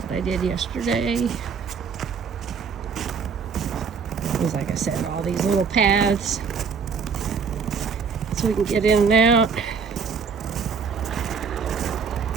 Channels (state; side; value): quieter; left; 5.8 dB